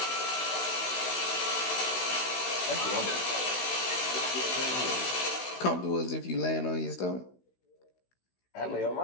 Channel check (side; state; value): right; late; 16 ms